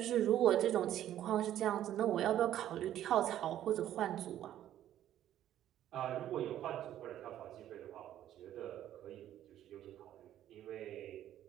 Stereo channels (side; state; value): left; quieter; 11.9 dB